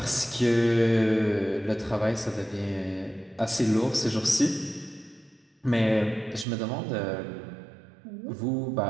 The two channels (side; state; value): left; drops out; at 6.5 s